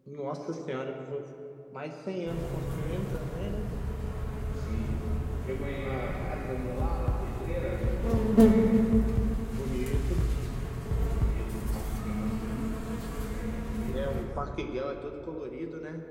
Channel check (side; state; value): both; identical; correlation 1.00